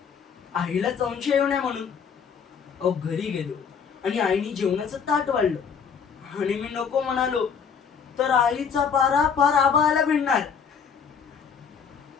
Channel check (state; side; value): quieter; right; 6.6 dB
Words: आईला संशय येऊ नये म्हणून. अहो घरी गेलो आणि आईने जेवणाचं ताट वाढलं आणि मी नको म्हणालो तर आईचा पारा फार आबाळाला भिडणार.